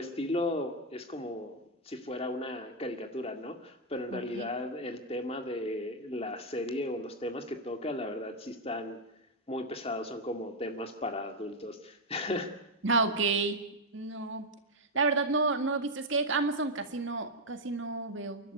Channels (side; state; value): both; normal; correlation 0.00